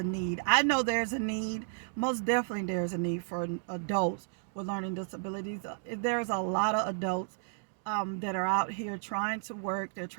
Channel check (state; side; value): silent; left; digital silence